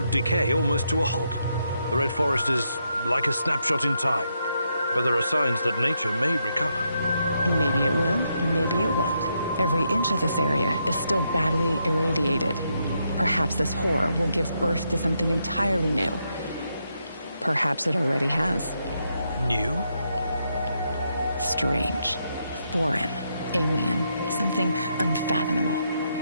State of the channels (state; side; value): inverted; both; correlation -0.80